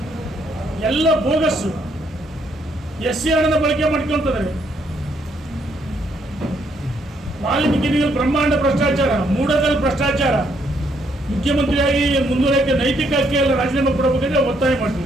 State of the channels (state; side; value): normal; both; correlation 0.72